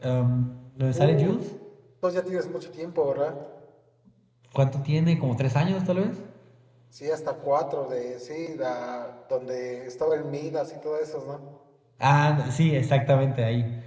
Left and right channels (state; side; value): identical; both; correlation 1.00